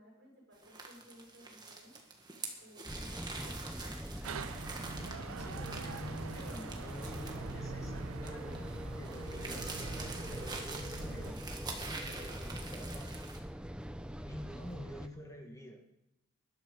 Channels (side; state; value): both; normal; correlation 0.61